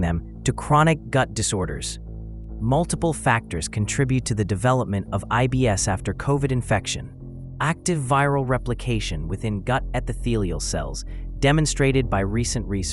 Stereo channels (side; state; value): both; identical; correlation 1.00